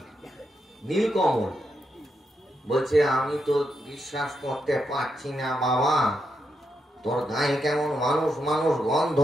নীলকমল। বলছে আমি তো বিশ্বাস করতে পারছি না বাবা, তোর গায়ে কেমন মানুষ মানুষ গন্ধ।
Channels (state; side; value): normal; both; correlation 0.83